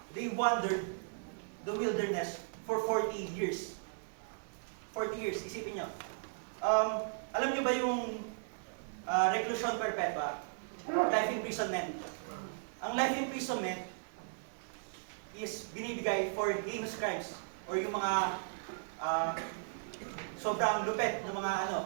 they wandered the wilderness for 40 years. 40 years, isipin nyo. Alam nyo ba yung reclusion perpetua? Life imprisonment. Ang life imprisonment is binibigay for heinous crimes or yung mga sobrang lupet na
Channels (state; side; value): silent; left; digital silence